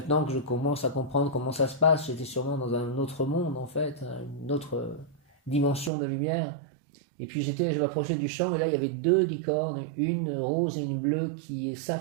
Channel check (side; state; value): left; drops out; at 5.9 s